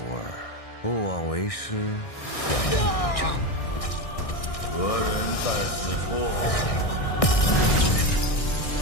儿，不枉为师养你一丈。何人在此处？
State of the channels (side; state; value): right; late; 1.6 ms